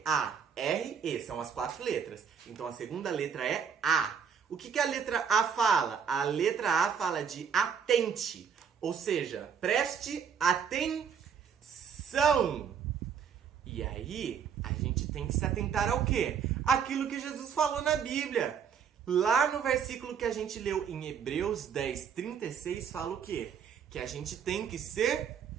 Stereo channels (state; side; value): quieter; left; 7.1 dB